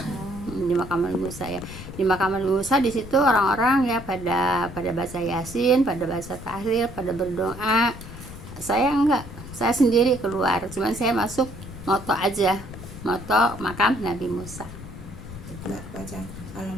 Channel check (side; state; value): left; noise; rumble, 13 dB below the sound